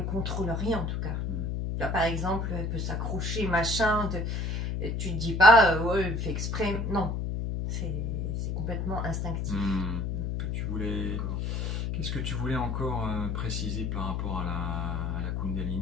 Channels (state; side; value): noise; left; hum, 1 dB below the sound